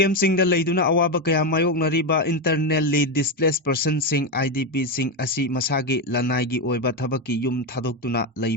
sing da leiduna awaba kaya mayok nariba internally displaced person sing IDP sing asi masagi lanai gi oiba thabaki yum thadoktuna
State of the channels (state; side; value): normal; both; correlation 0.09